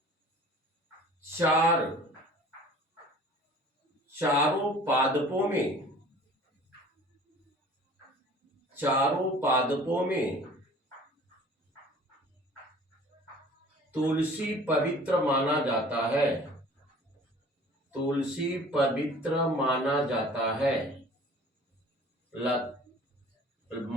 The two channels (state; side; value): normal; both; correlation 0.47